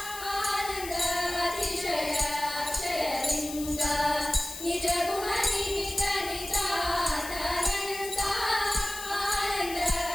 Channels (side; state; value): left; noise; hiss, 10 dB below the sound